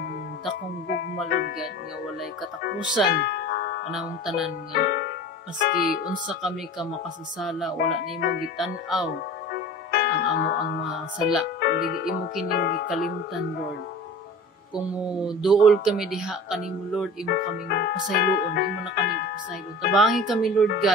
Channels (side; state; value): both; normal; correlation 0.39